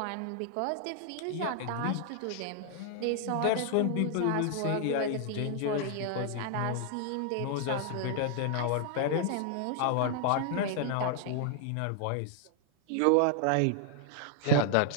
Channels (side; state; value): both; different; correlation 0.00